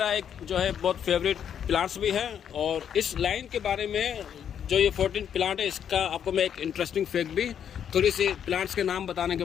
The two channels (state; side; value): quieter; right; 8.7 dB